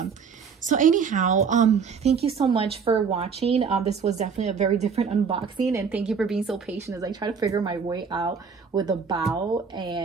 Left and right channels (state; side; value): quieter; left; 6.0 dB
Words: So anyhow, thank you so much for watching. This was definitely a very different unboxing, and thank you for being so patient as I try to figure my way out with the BAO,